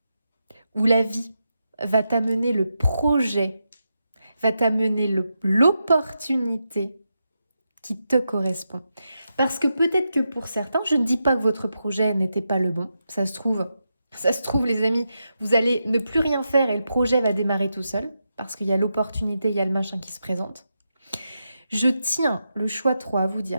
Où la vie va t'amener le projet, va t'amener l'opportunité qui te correspond. Parce que peut-être que pour certains, je ne dis pas que votre projet n'était pas le bon, ça se trouve, les amis, vous allez ne plus rien faire et le projet va démarrer tout seul, parce qu'il y a l'opportunité, il y a le machin qui se présente. Je tiens le choix 3 à vous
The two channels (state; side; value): inverted; both; correlation -0.87